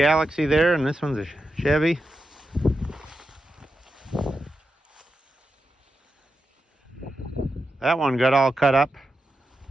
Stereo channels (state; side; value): normal; both; correlation 0.88